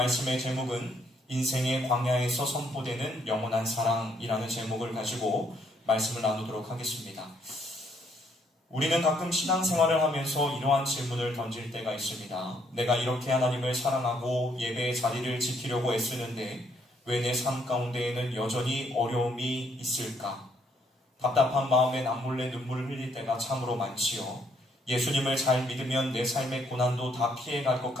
제목은 인생의 광야에서 선포되는 영원한 사랑이라는 제목을 가지고 말씀을 나누도록 하겠습니다. 우리는 가끔 신앙생활을 하면서 이러한 질문을 던질 때가 있습니다. 내가 이렇게 하나님을 사랑하고 예배의 자리를 지키려고 애쓰는데 왜 내 삶 가운데에는 여전히 어려움이 있을까? 답답한 마음에 남몰래 눈물을 흘릴 때가 참으로 많지요. 예수님을 잘 믿으면 내 삶의 고난도 다 피해갈 것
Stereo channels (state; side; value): normal; both; correlation 0.69